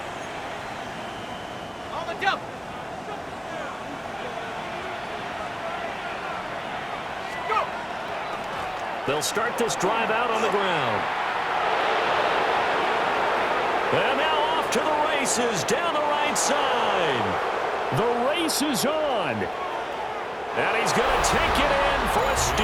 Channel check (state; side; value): identical; both; correlation 1.00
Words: On the jump. Go. They'll start this drive out on the ground. And now off to the races down the right side. The race is on. And he's going to take it in for a